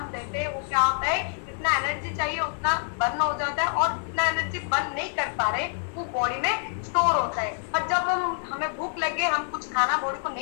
देते हैं वो क्या होता है, जितना एनर्जी चाहिए उतना बर्न हो जाता है और जितना एनर्जी बर्न नहीं कर पा रहे वो बॉडी में स्टोर होता है। और जब हमें भूख लगे, हम कुछ खाना बॉडी को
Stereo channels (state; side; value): silent; right; 60 dB below the other